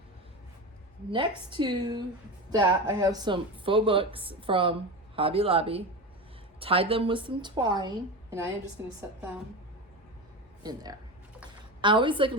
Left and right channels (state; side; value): normal; both; correlation 0.23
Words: Next to that, I have some faux books from Hobby Lobby. Tied them with some twine, and I am just gonna set them in there. I always like a